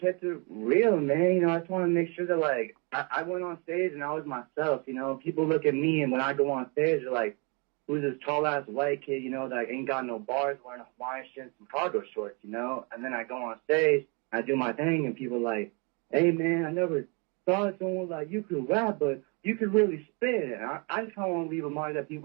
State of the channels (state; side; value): quieter; left; 32.7 dB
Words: it real, man. You know, I just want to make sure that, like, I went on stage and I was myself, you know. People look at me, and when I go on stage, they're like, who's this tall-ass white kid, you know, that ain't got no bars, wearing a Hawaiian shirt and some cargo shorts, you know? And then I go on stage, I do my thing, and people are like, hey, man, I never thought someone like you could rap, but you could really spit. And I just kind of want to leave a mark that